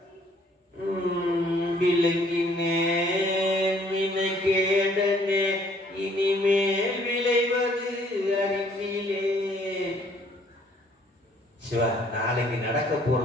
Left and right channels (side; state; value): both; normal; correlation 0.61